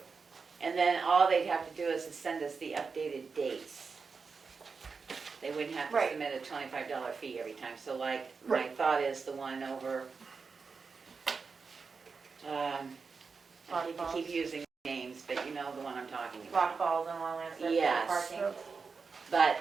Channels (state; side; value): quieter; left; 5.0 dB